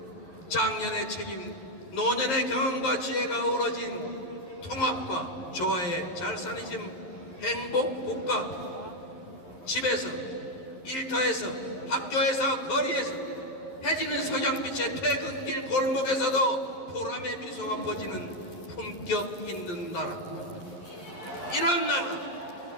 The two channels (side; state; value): right; late; 11 ms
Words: 장년의 책임, 노년의 경험과 지혜가 어우러진 통합과 조화의 잘사니즘 행복국가. 집에서, 일터에서, 학교에서, 거리에서, 해지는 석양빛의 퇴근길 골목에서도 보람의 미소가 퍼지는 품격 있는 나라. 이런